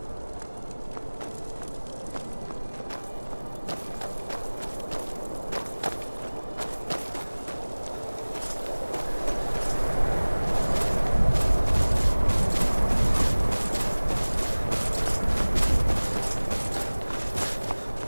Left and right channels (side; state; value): both; inverted; correlation -1.00